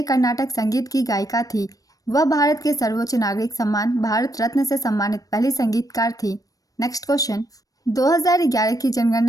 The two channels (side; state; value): right; late; 0.17 ms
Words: कर्नाटक संगीत की गायिका थी। वह भारत के सर्वोच्च नागरिक सम्मान भारत रत्न से सम्मानित पहली संगीतकार थी। नेक्स्ट क्वेश्चन, 2011 की